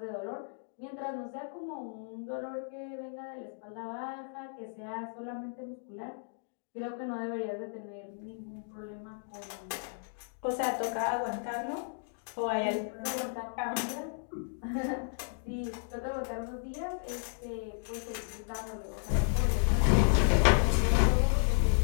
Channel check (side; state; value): right; silent; digital silence